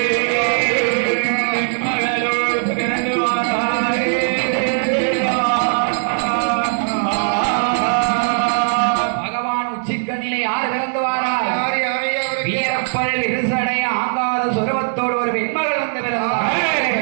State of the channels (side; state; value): left; silent; digital silence